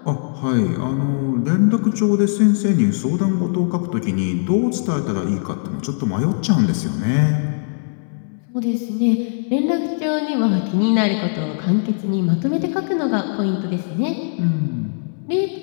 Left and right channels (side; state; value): right; silent; 64 dB below the other